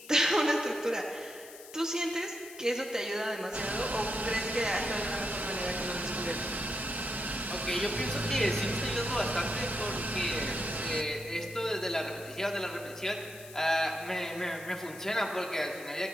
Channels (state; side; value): noise; left; hiss, 17 dB below the sound